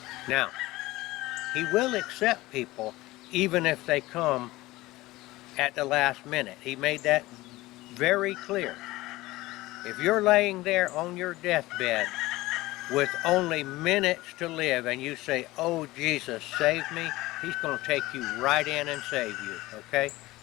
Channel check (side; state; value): right; quieter; 18.9 dB